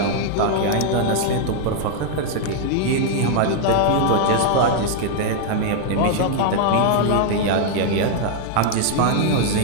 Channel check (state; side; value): different; both; correlation 0.00